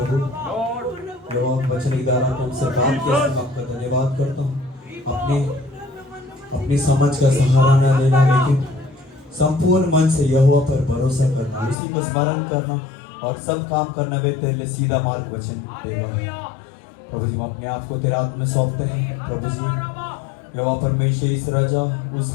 जो आप वचन के द्वारा हमसे बात किया, आपका धन्यवाद करता हूँ। अपनी समझ का सहारा न लेना, लेकिन संपूर्ण मन से यहोवा पर भरोसा करना, उसी को स्मरण करना और सब काम करने में तेरे लिए सीधा मार्ग वचन देगा। प्रभु जी, हम अपने आप को तेरे हाथ में सौंपते हैं। प्रभु जी, यहोवा परमेश्वर इस राजा उस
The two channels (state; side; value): drops out; right; at 11.8 s